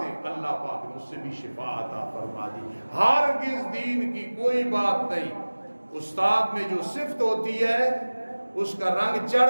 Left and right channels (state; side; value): inverted; both; correlation -1.00